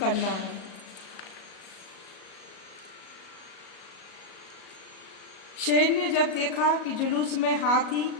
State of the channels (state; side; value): late; right; 37 ms